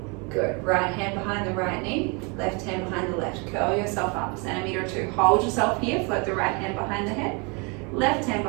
Good. Right hand behind the right knee, left hand behind the left. Curl yourself up, centimeter or 2. Hold yourself here, float the right hand behind the head, left hand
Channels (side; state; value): left; quieter; 31.7 dB